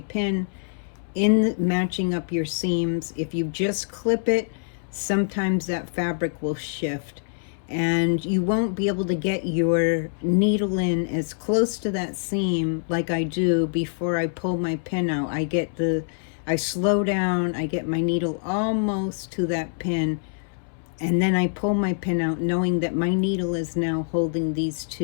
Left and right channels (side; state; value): right; silent; 62 dB below the other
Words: in matching up your seams. If you just clip it, sometimes that fabric will shift and you won't be able to get your needle in as close to that seam like I do before I pull my pin out. I slow down, I get my needle almost to that pin, and then I pull my pin out knowing that my needle is now holding these